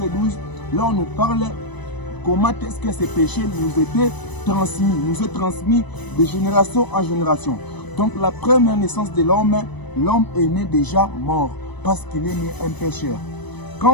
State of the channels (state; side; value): late; right; 1.0 ms